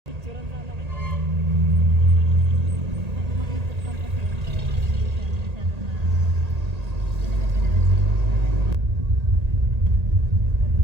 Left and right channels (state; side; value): late; left; 1.8 ms